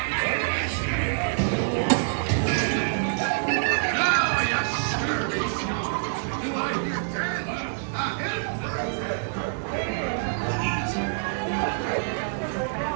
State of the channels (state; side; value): silent; left; 61 dB below the other